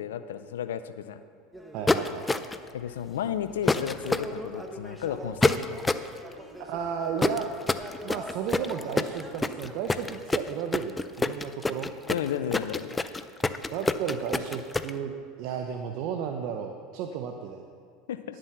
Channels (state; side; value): normal; both; correlation 0.54